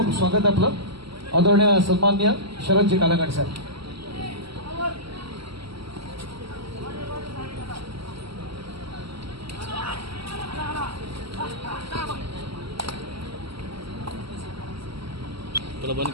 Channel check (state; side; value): late; left; 0.75 ms